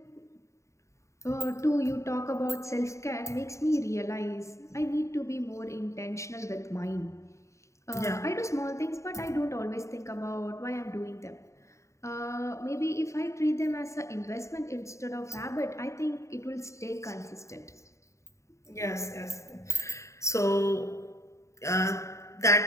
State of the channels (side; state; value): right; late; 0.14 ms